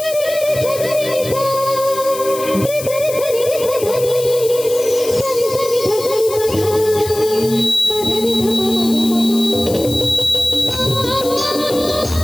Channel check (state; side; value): noise; left; hiss, 11 dB below the sound